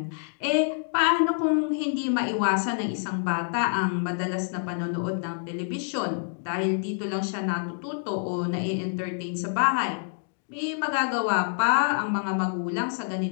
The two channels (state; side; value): silent; right; digital silence